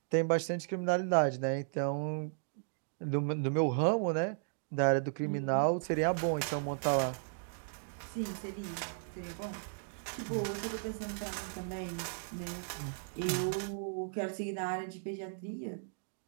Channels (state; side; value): silent; left; digital silence